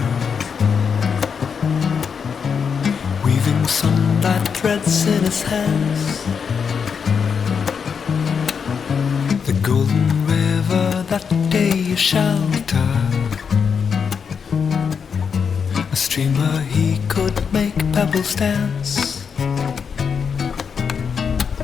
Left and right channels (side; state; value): right; quieter; 6.4 dB